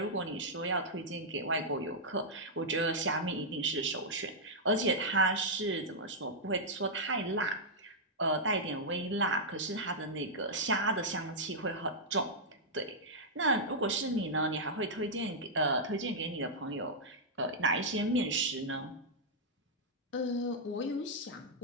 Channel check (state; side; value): normal; both; correlation -0.07